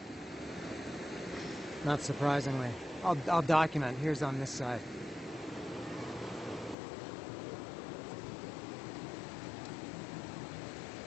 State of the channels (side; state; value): right; drops out; at 6.8 s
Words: Not surprisingly. I'll document. Here's on this side.